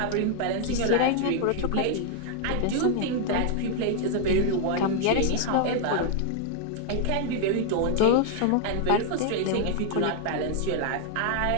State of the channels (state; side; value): different; both; correlation 0.00